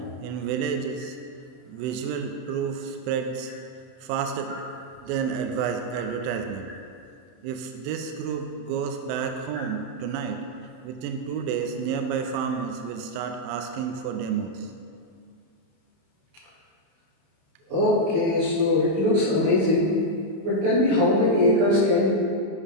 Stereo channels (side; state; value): left; late; 31 ms